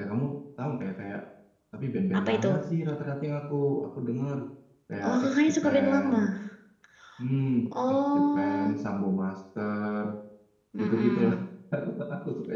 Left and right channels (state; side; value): identical; both; correlation 1.00